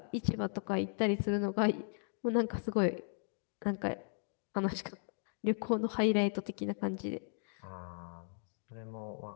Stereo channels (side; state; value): right; silent; digital silence